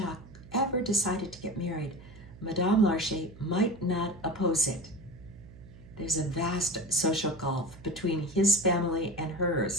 ever decided to get married, Madame Larcher might not oppose it. There's a vast social gulf between his family and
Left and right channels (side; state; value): right; noise; hum, 19 dB below the sound